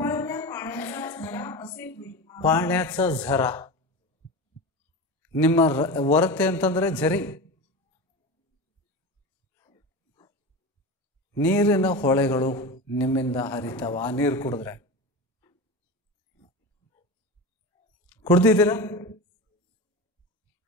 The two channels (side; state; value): both; normal; correlation 0.26